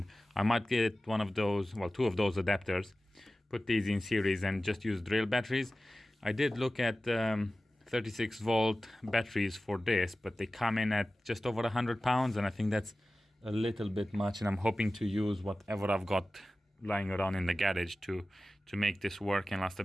I might get one of those, well, two of those adapters, put these in series and just use drill batteries. I did look at 36 volt batteries for this, but they come in at just over 100 pounds, and I think that's a little bit much, and I'm hoping to use whatever I've got lying around in the garage to make this work and last a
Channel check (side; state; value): both; normal; correlation 0.96